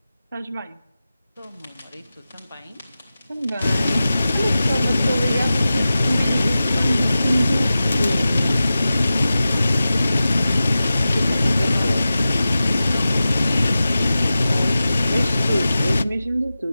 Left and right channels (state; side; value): inverted; both; correlation -0.94